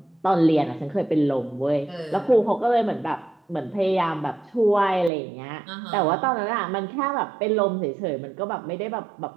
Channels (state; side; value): drops out; left; at 5.1 s